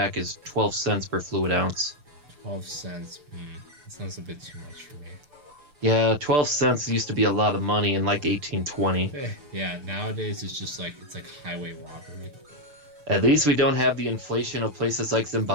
is 12 cents per fluid ounce. 12 cents. That sounds a bit too much for me. Yeah, 12 cents used to be a lot of money in like 1820. Yeah, nowadays it's just like it's like highway robbery. At least we don't have the inflation of places like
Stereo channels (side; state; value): left; late; 6.7 ms